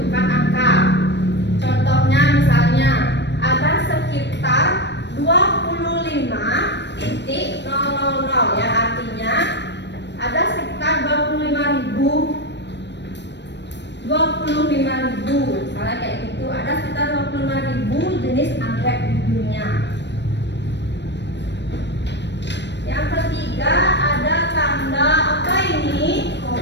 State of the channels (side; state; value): right; late; 0.51 ms